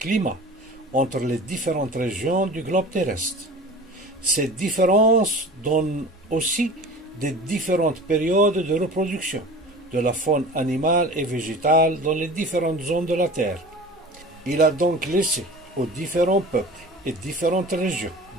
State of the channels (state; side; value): normal; both; correlation 0.38